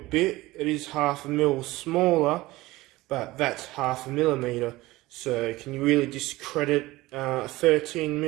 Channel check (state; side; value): quieter; left; 19.1 dB